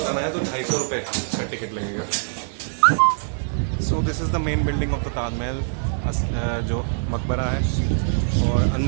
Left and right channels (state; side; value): silent; left; digital silence